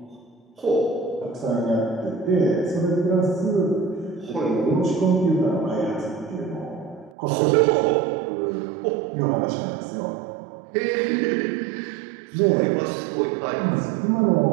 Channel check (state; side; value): drops out; left; at 7.2 s